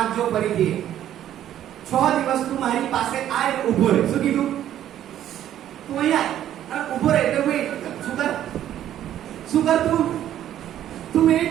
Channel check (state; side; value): quieter; left; 11.5 dB